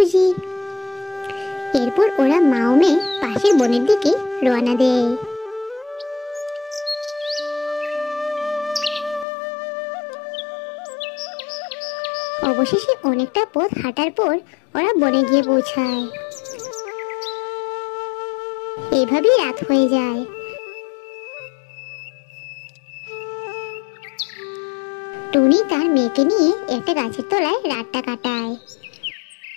এরপর ওরা মা ও মেয়ে পাশের বনের দিকে রওনা দেয়। অবশেষে অনেকটা পথ হাঁটার পর ওরা বনে গিয়ে পৌঁছায়। এইভাবেই রাত হয়ে যায়। টুনি তার মেয়েকে নিয়ে একটা গাছের তলায় রাতটা কাটায়।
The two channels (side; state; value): right; drops out; at 9.2 s